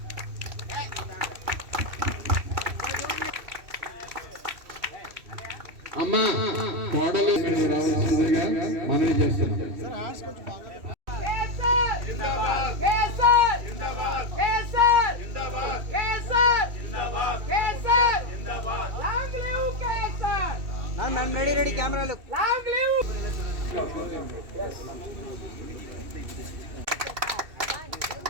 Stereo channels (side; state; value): left; late; 2.7 ms